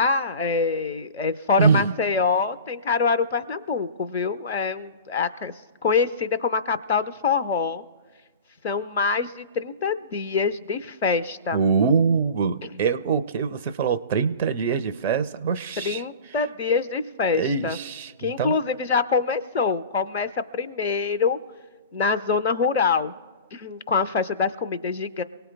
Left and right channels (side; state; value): both; inverted; correlation -0.35